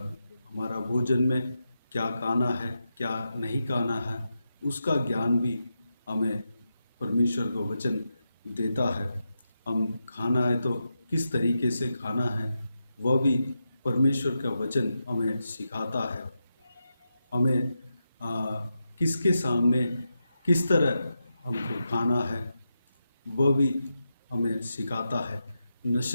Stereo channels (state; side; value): inverted; both; correlation -0.88